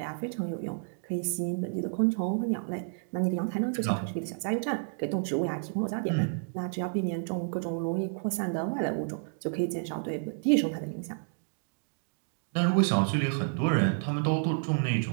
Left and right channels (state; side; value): silent; left; digital silence